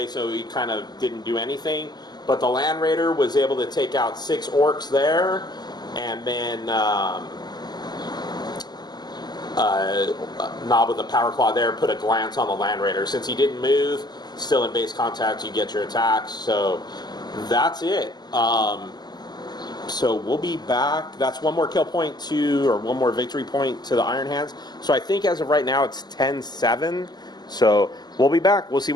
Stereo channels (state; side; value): late; right; 0.20 ms